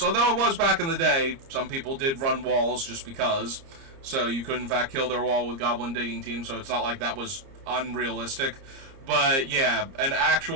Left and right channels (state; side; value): late; left; 30 ms